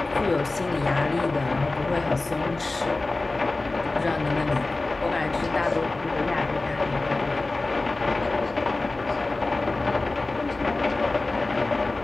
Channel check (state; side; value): quieter; right; 3.2 dB